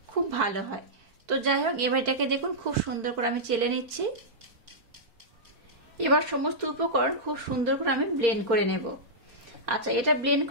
খুব ভালো হয়। তো যাই হোক এবার এটাকে দেখুন খুব সুন্দর করে আমি চেলে নিচ্ছি। এবার সমস্ত উপকরণ খুব সুন্দর করে আমি ব্লেন্ড করে নেব। আচ্ছা, এটা ব্লেন্ড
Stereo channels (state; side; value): late; left; 4.5 ms